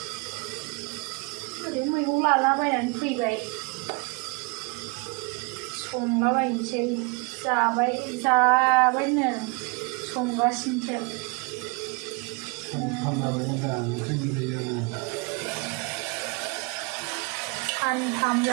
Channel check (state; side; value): quieter; left; 30.4 dB